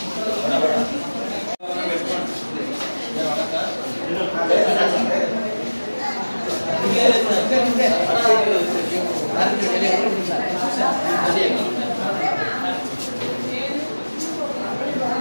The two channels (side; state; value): both; inverted; correlation -1.00